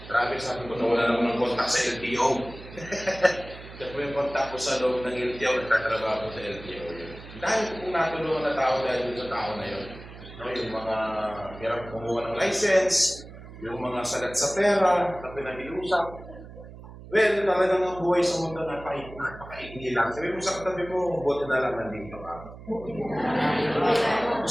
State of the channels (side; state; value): right; noise; hum, 16 dB below the sound